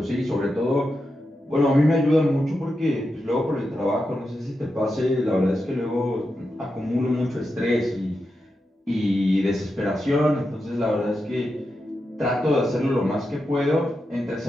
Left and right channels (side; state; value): both; normal; correlation 0.88